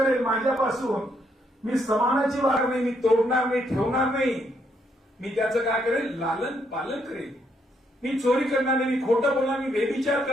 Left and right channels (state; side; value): normal; both; correlation 0.74